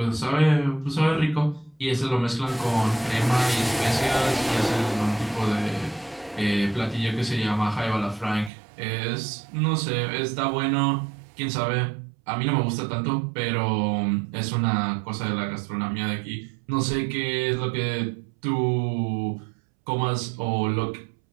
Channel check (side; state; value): left; drops out; at 8.5 s